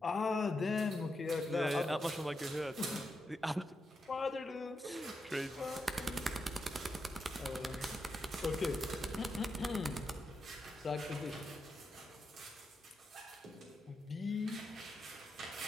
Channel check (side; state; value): both; normal; correlation 0.85